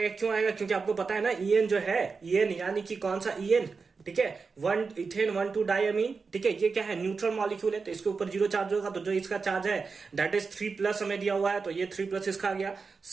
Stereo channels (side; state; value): left; quieter; 4.8 dB